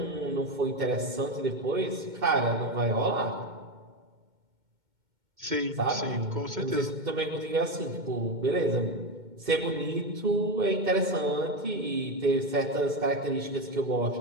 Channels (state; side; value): late; left; 2.1 ms